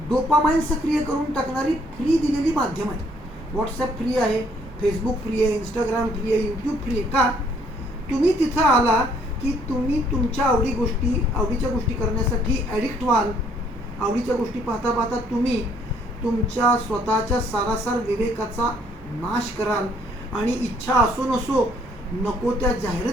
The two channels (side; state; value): both; normal; correlation 0.65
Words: डोपामाइन सक्रिय करून टाकणारी फ्री दिलेली माध्यम आहे. व्हॉट्सॲप फ्री आहे, फेसबुक फ्री आहे, इंस्टाग्राम फ्री आहे, यूट्यूब फ्री आहे. का? तुम्ही तिथं आला की तुम्ही तुमच्या आवडीच्या गोष्टी करण्यासाठी ॲडिक्ट व्हाल. आवडीच्या गोष्टी पाहता पाहता तुम्ही तुमच्या स्वतःच्या सारासार विवेकाचा नाश कराल आणि इच्छा असो नसो नको त्या